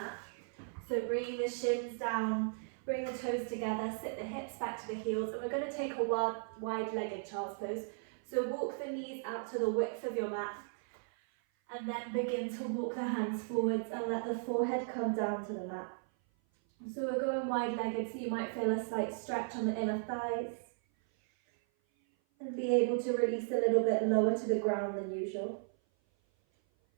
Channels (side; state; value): left; silent; 54 dB below the other